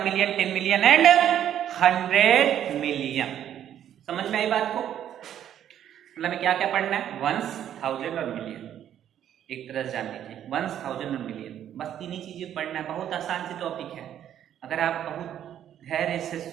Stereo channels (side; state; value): left; quieter; 10.4 dB